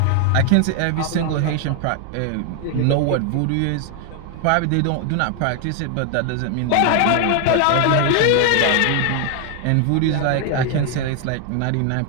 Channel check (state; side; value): different; both; correlation 0.00